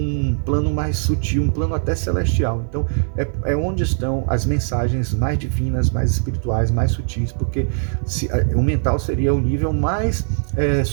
plano mais sutil, um plano até celestial. Então, é onde estão as mensagens mais divinas, mais espirituais, mais sutis, porque o mental seria o nível mais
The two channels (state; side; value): silent; left; 66 dB below the other